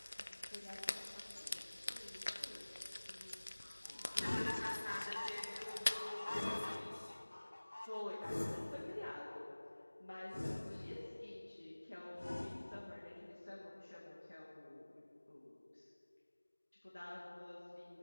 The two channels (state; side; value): inverted; both; correlation -1.00